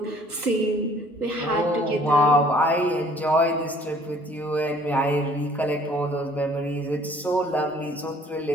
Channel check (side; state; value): both; normal; correlation 0.56